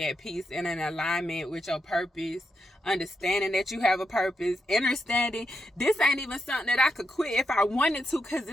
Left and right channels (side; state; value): both; normal; correlation 0.84